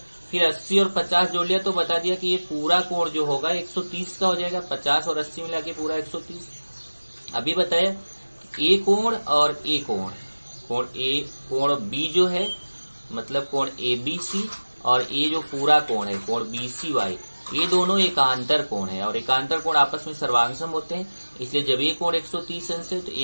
फिर 80 और 50 जोड़ लिया तो बता दिया कि ये पूरा कोण जो होगा 130 का हो जाएगा, 50 और 80 मिला के पूरा 130। अभी बताया ए कोण और ए कोण, कोण B जो है मतलब कोण ABC और ये जो पूरा कोण है कोण BCY, ये दोनों एकांतर कोण है और एकांतर कोण आपस में सर्वांगसम होते हैं, इसलिए जब ये कोण 130 अंश है तो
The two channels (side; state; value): both; inverted; correlation -1.00